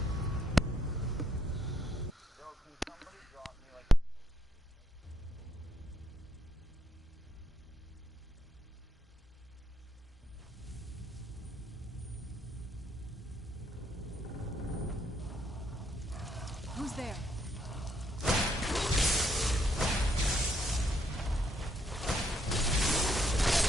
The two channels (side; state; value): both; normal; correlation 0.73